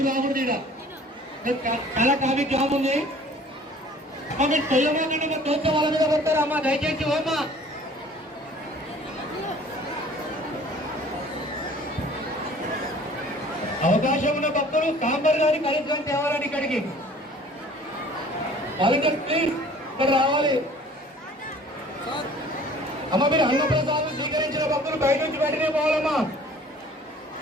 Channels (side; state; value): both; normal; correlation 0.50